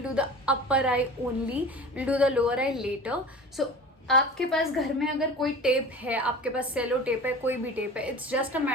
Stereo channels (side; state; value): both; normal; correlation 0.36